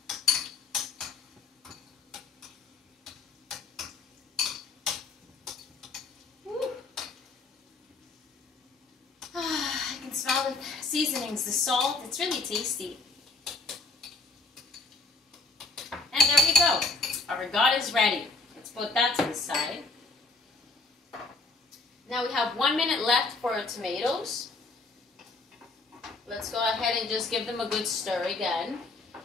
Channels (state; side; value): quieter; right; 3.6 dB